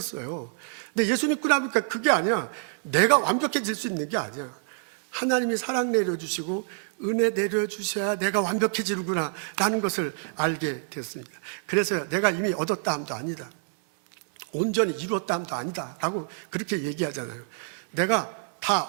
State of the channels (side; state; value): left; silent; digital silence